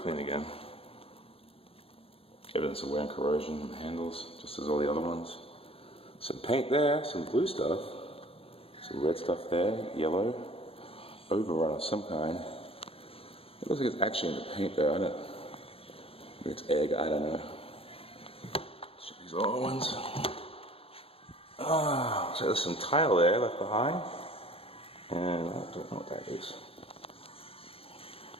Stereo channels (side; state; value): right; late; 0.27 ms